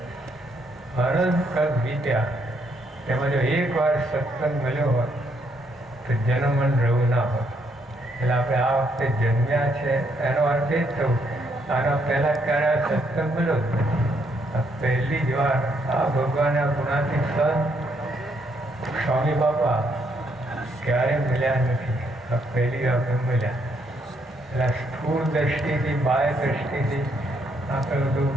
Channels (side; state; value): both; normal; correlation 0.73